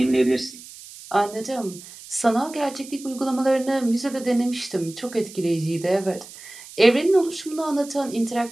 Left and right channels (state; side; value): noise; right; hiss, 17 dB below the sound